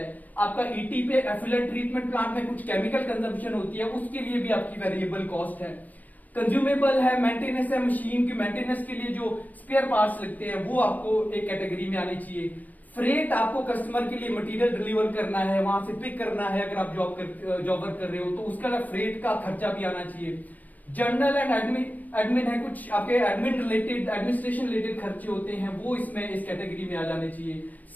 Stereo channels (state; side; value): late; right; 0.081 ms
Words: आपका ईटी पे एफिलेंट ट्रीटमेंट प्लांट में कुछ केमिकल कंजम्पशन होती है, उसके लिए भी आपकी वेरिएबल कॉस्ट है। कंज्यूमेबल है, मेंटेनेंस है, मशीन की मेंटेनेंस के लिए जो स्पेयर पार्ट्स लगते हैं वो आपको एक कैटेगरी में आनी चाहिए। फ्रेट, आपको कस्टमर के लिए मटेरियल डिलीवर करना है, वहां से पिक करना है, अगर आप जॉब वर्क कर रहे हो तो उसका फ्रेट का खर्चा भी आना चाहिए। जर्नल एंड एडमिन है, कुछ आपके एडमिनिस्ट्रेशन रिलेटेड खर्चे होते हैं, वो इसमें इस कैटेगरी में आ जाने चाहिए।